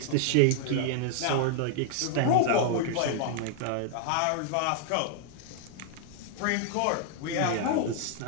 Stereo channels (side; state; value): both; different; correlation -0.01